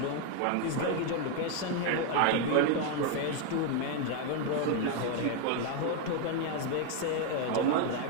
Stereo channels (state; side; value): different; both; correlation 0.01